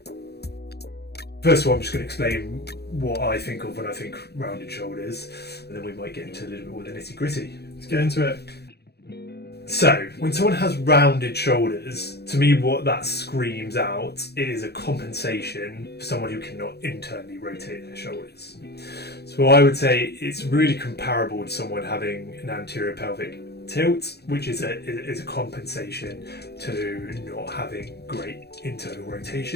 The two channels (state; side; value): late; right; 0.48 ms